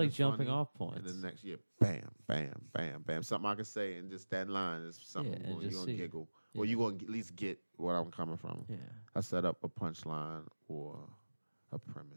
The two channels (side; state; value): both; inverted; correlation -1.00